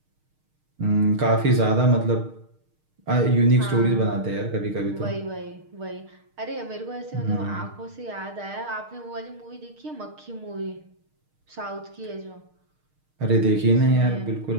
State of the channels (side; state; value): left; late; 6.5 ms